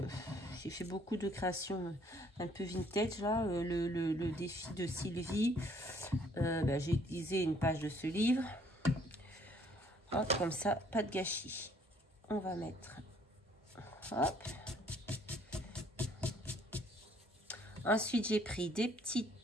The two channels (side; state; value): both; normal; correlation 0.62